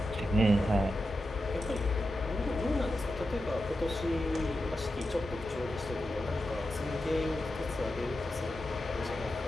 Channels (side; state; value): both; normal; correlation 0.90